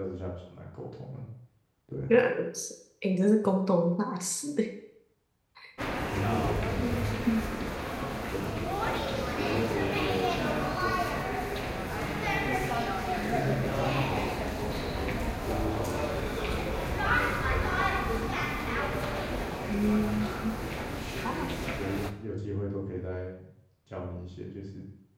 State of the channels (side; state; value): both; identical; correlation 1.00